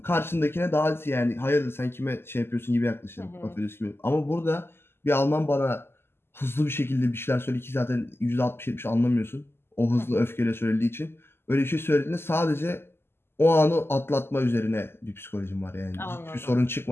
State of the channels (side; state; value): right; late; 0.12 ms